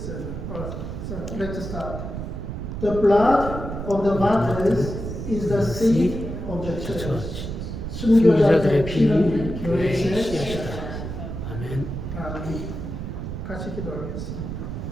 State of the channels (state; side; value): noise; right; rumble, 6 dB below the sound